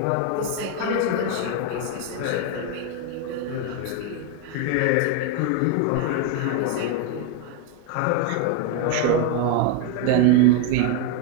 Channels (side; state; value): both; different; correlation 0.01